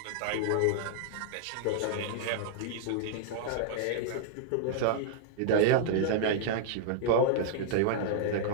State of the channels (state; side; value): different; both; correlation -0.02